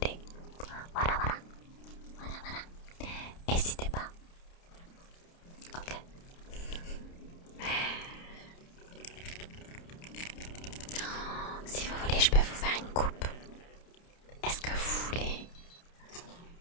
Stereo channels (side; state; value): right; late; 29 ms